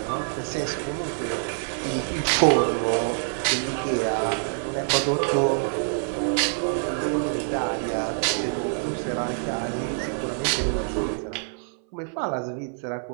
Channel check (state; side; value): silent; left; 58 dB below the other